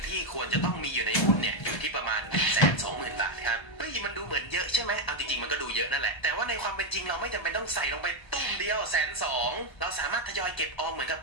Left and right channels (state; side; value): late; right; 1.3 ms